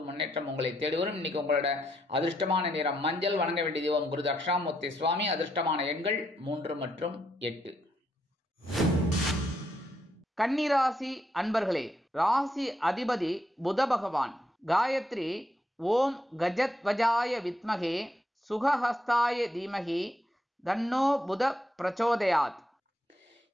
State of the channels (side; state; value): both; normal; correlation 0.77